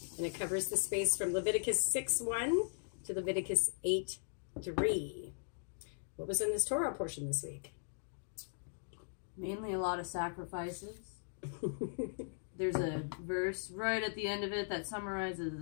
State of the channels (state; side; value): silent; right; digital silence